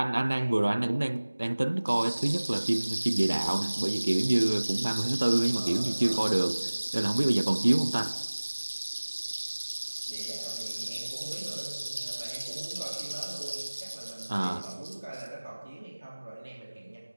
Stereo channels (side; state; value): both; inverted; correlation -1.00